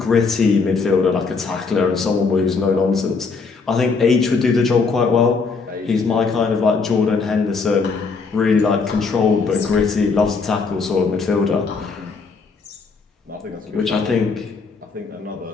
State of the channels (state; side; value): quieter; right; 4.7 dB